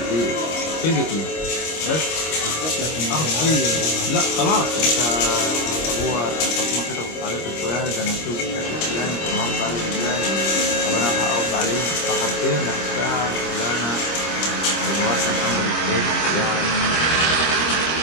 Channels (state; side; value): late; right; 25 ms